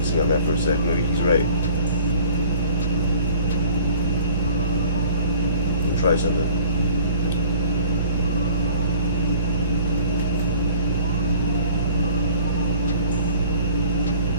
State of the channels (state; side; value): inverted; both; correlation -0.49